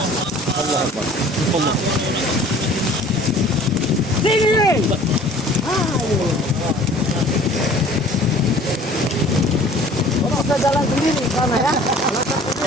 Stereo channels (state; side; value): normal; both; correlation 0.49